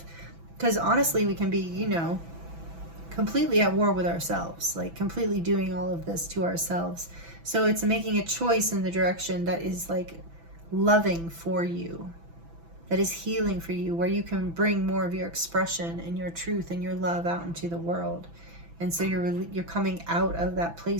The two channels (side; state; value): left; late; 6.0 ms